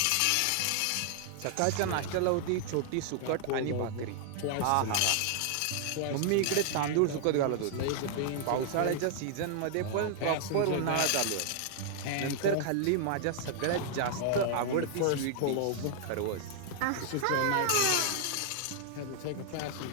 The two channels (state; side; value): different; both; correlation 0.00